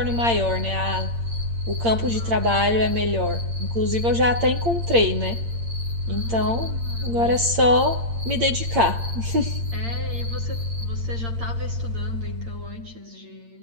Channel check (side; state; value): left; late; 8.7 ms